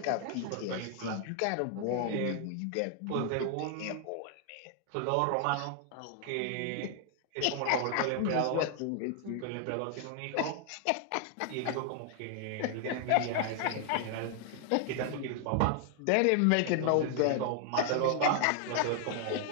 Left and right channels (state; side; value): different; both; correlation 0.00